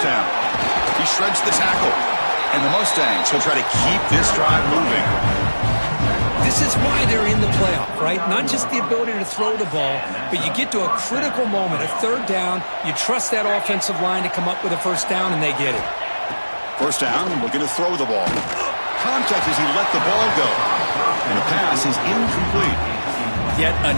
down. He shreds the tackle. And the Mustangs will try to keep this drive moving. This is why they're in the playoff, right? Not just the ability to throw the ball, but you get to a critical moment, a third down, you trust that offensive line to come up with a first down, and they get it. First down, looking to throw the ball. Contact as he let the ball go. And the pass is incomplete. Yet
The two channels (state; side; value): inverted; both; correlation -1.00